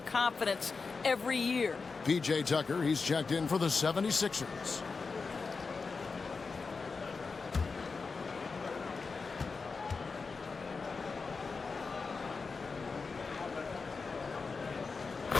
confidence every year. P.J. Tucker, he's checked in for the 76ers.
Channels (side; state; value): right; quieter; 4.6 dB